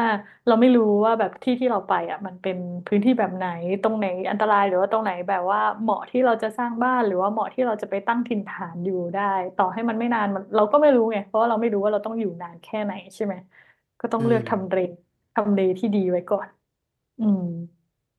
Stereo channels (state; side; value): identical; both; correlation 1.00